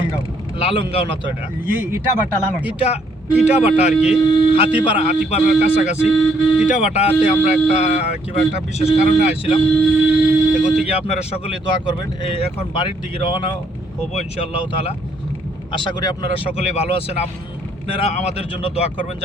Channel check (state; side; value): normal; both; correlation 0.69